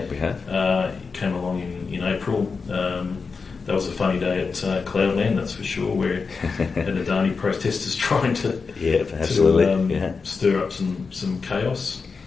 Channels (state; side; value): quieter; right; 4.9 dB